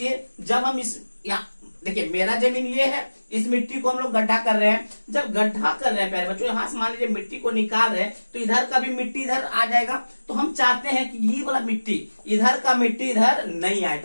जब हम इस यहाँ देखिए, मेरा जमीन ये है, इस मिट्टी को हम लोग गड्ढा कर रहे हैं। जब गड्ढा कर रहे हैं प्यारे बच्चों, यहां से मान लीजिए मिट्टी को निकाल रहे हैं, तो इधर का भी मिट्टी इधर आ जाएगा। तो हम चाहते हैं कि ये वाला मिट्टी, इधर का मिट्टी इधर नहीं आए,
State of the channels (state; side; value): inverted; both; correlation -1.00